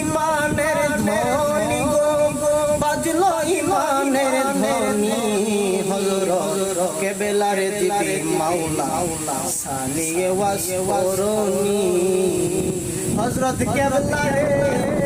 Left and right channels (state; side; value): identical; both; correlation 1.00